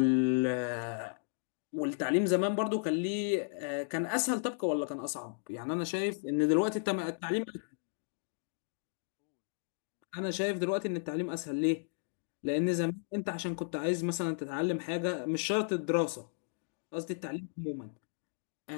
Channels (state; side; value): silent; right; digital silence